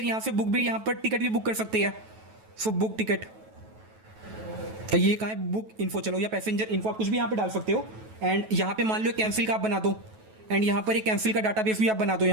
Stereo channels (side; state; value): left; late; 9.2 ms